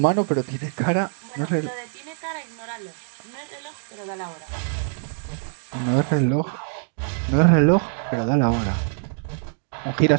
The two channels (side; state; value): left; silent; digital silence